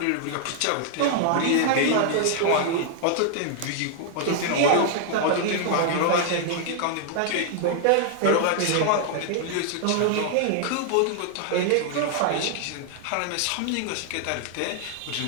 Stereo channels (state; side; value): different; both; correlation 0.00